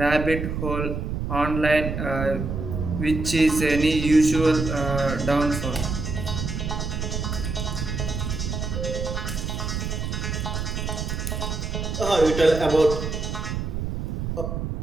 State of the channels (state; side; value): noise; right; rumble, 3 dB below the sound